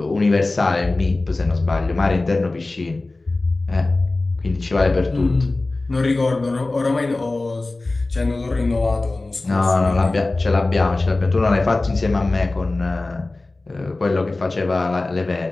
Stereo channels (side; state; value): right; quieter; 3.1 dB